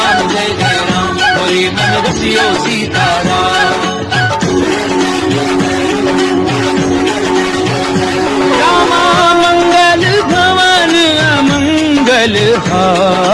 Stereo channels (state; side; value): identical; both; correlation 1.00